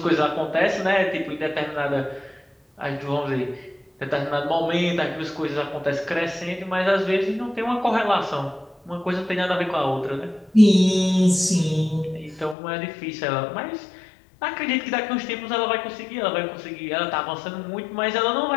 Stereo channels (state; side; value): drops out; right; at 12.6 s